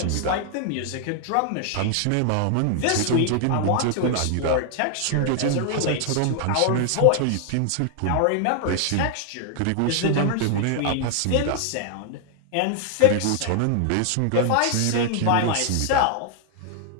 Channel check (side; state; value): both; different; correlation 0.00